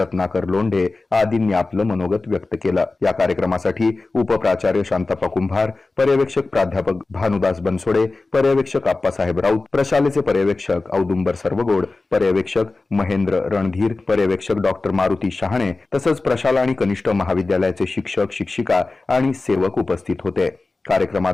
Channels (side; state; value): right; quieter; 3.5 dB